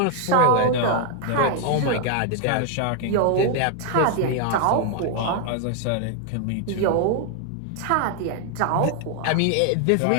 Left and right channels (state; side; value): different; both; correlation 0.00